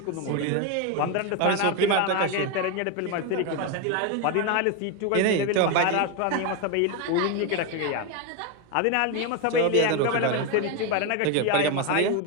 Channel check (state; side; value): different; both; correlation 0.02